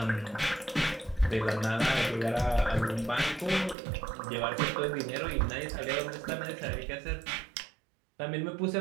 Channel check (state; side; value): drops out; left; at 3.8 s